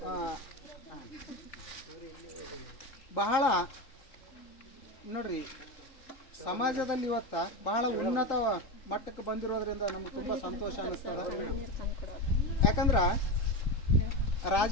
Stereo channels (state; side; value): late; right; 3.9 ms